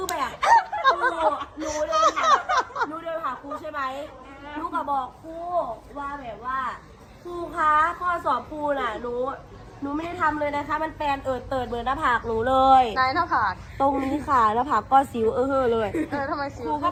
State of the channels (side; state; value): both; identical; correlation 1.00